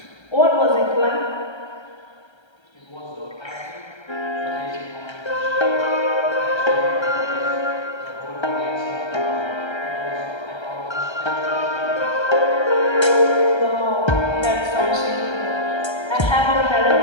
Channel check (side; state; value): right; late; 1.3 ms